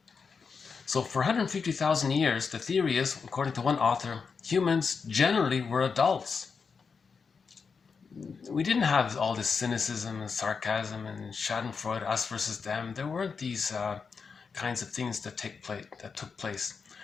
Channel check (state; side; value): quieter; right; 5.4 dB